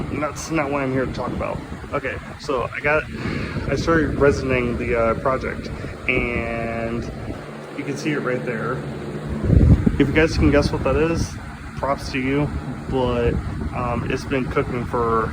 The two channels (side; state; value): both; identical; correlation 1.00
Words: what I'm here to talk about. Okay, so I started resining the project, and you can see it right there. If you guys can guess what that is, props to you. But it's been cooking for